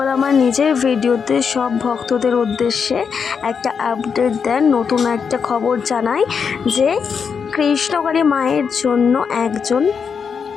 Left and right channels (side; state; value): right; quieter; 6.3 dB